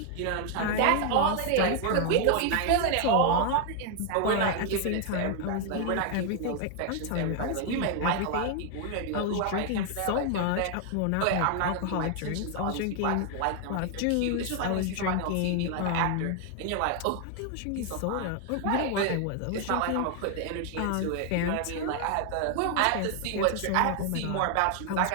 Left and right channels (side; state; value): both; different; correlation 0.00